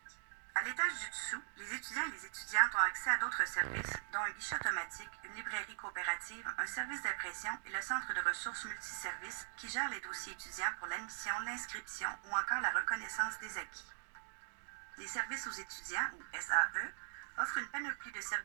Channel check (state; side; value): silent; left; digital silence